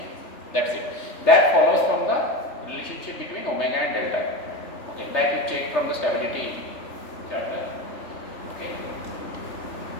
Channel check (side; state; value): right; late; 3.4 ms